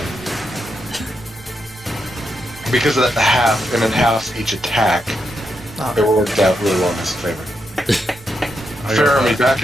Because of that half, and it halves each attack, it worked out really well in his favor. Fair, me back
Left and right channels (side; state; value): both; normal; correlation 0.83